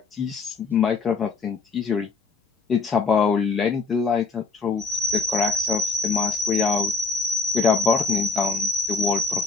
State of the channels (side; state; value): right; quieter; 4.3 dB